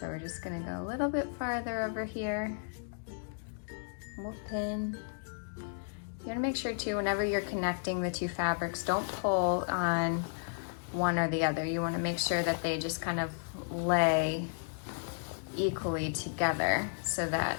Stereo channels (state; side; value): silent; right; digital silence